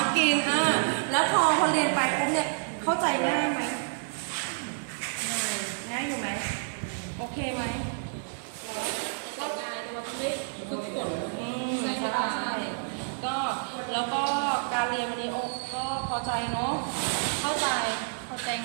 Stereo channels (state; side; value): silent; left; digital silence